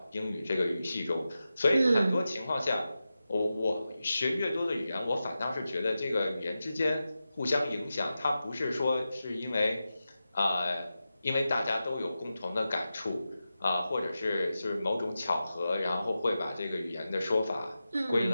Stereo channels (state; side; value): inverted; both; correlation -0.92